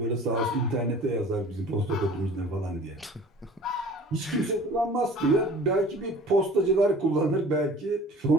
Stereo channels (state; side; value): normal; both; correlation 0.45